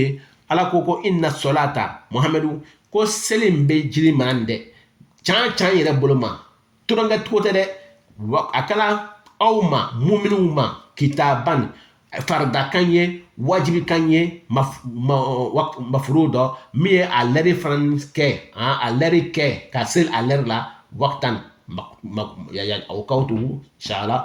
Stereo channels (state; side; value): identical; both; correlation 1.00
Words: ala koko inna salata muhammadu ko selim be jiri mande chan yere boloma turanga tote de akala awma mu'minuma kitaban farda kanye wajibi kanye mafrudo mi aleri franske aleri ke kasel aler la waqtan ya awqatu